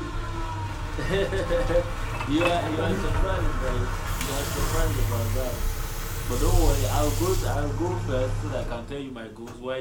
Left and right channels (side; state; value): both; identical; correlation 1.00